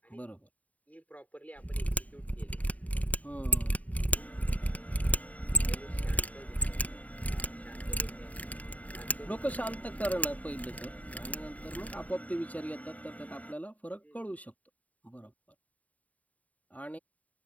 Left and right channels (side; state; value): right; late; 0.071 ms